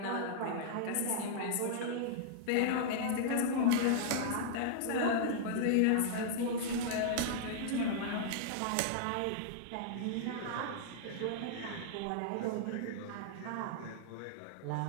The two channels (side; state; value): both; different; correlation -0.01